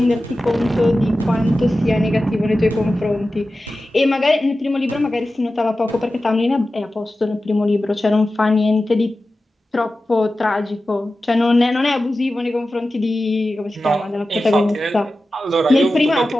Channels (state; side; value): normal; both; correlation 0.94